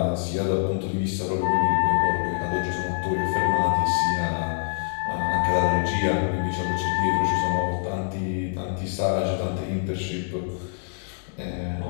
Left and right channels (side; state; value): right; silent; digital silence